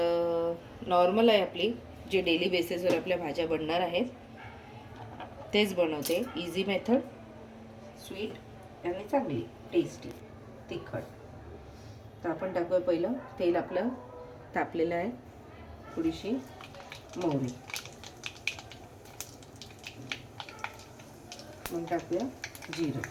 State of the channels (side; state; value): both; identical; correlation 1.00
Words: नॉर्मल आहे आपली, जे डेली बेसिसवर आपल्या भाज्या बनणार आहेत तेच बनवते. इझी मेथड, स्वीट आणि चांगली टेस्टी तिखट. तर आपण टाकूया पहिलं तेल. आपलं तापलेलं आहे. थोडीशी मोहरी, मग टाकूया जिरं,